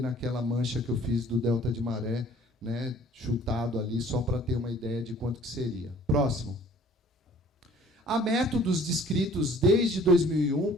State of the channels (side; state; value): both; normal; correlation 0.53